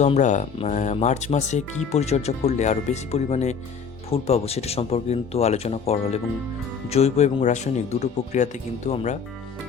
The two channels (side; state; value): right; quieter; 6.1 dB